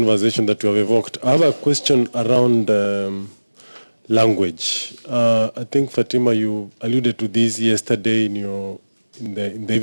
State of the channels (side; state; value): both; inverted; correlation -1.00